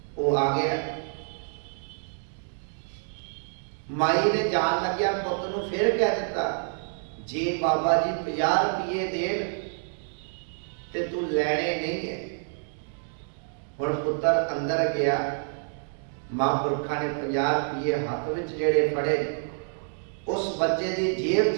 ਉਹ ਆ ਗਿਆ। ਮਾਈ ਨੇ ਜਾਣ ਲੱਗਿਆ ਪੁੱਤ ਨੂੰ ਫਿਰ ਕਹਿ ਦਿੱਤਾ, ਜੇ ਬਾਬਾ ਜੀ 50 ਰੁਪਏ ਦੇਣ ਤੇ ਤੂੰ ਲੈਣੇ ਨਹੀਂ ਹੈ। ਹੁਣ ਪੁੱਤਰ ਅੰਦਰ ਗਿਆ, ਮਹਾਂਪੁਰਖਾਂ ਨੇ 50 ਰੁਪਏ ਹੱਥ ਵਿੱਚ ਜਿਹੜੇ ਫੜੇ ਉਸ ਬੱਚੇ ਦੀ ਜੇਬ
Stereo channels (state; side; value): silent; left; digital silence